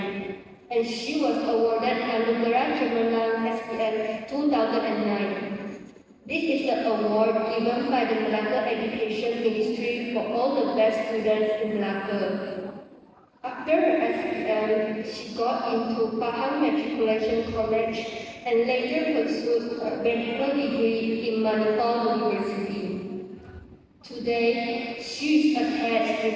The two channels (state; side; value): identical; both; correlation 1.00